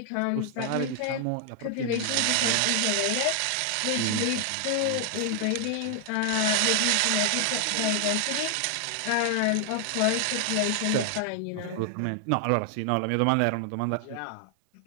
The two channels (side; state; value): both; different; correlation 0.00